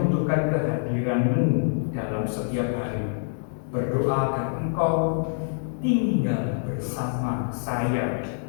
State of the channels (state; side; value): silent; right; 61 dB below the other